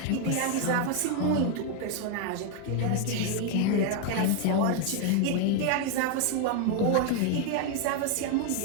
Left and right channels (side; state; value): both; different; correlation 0.01